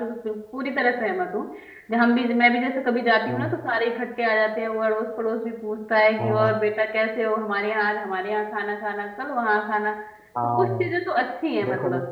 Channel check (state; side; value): identical; both; correlation 1.00